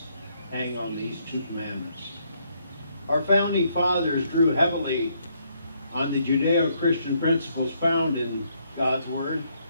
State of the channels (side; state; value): both; inverted; correlation -0.72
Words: hang on these two commandments. Our founding fathers drew heavily on the Judeo-Christian principles found in God's Word,